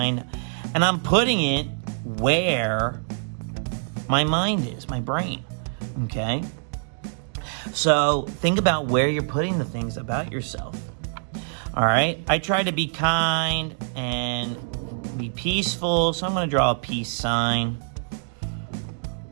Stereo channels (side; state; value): left; silent; digital silence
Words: and I'm putting it where my mind is, my brain, okay? So think about where you're putting the things about yourself, all right? I try to be kind and be peaceful, so I'm going to draw a peace sign,